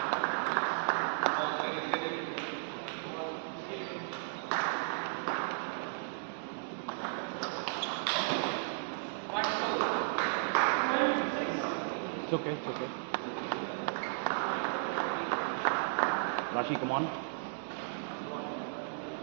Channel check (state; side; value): silent; left; digital silence